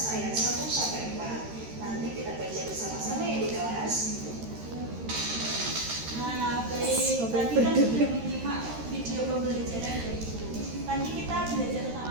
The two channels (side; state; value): left; late; 13 ms